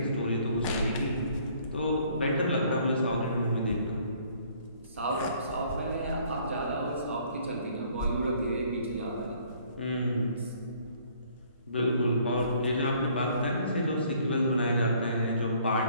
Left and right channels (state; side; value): inverted; both; correlation -0.61